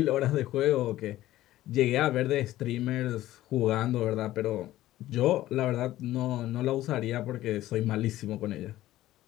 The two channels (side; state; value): right; quieter; 15.0 dB